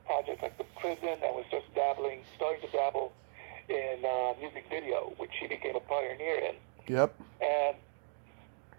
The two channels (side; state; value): left; silent; digital silence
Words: projects like The Prison, and was just starting to dabble in music video, which he became a pioneer in. Yep. And